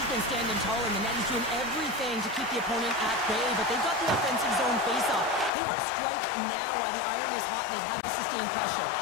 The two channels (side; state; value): right; drops out; at 5.5 s